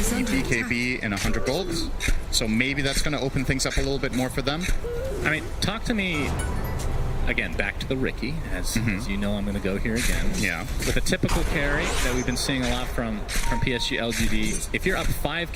in 100 golds, so maybe that's going to open things up a little bit more for them. I mean, talk to me, again, back to the Ricky, as you know I'm going to go here again. Yeah. With a typical carry that we've been seeing a lot from PSG LGD, if you're up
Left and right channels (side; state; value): both; identical; correlation 1.00